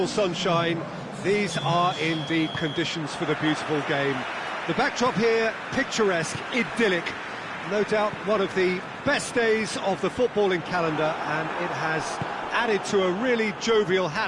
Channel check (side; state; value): both; identical; correlation 1.00